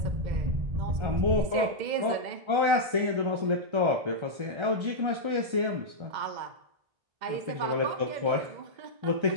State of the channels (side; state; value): left; late; 1.3 ms